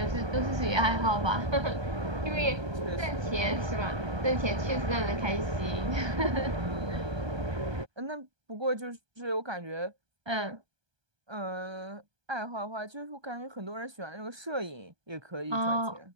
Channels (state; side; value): late; left; 1.2 ms